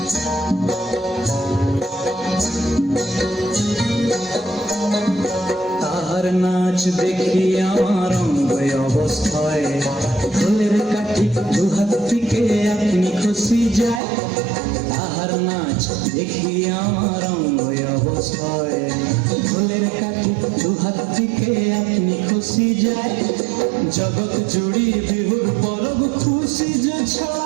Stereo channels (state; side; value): drops out; left; at 14.0 s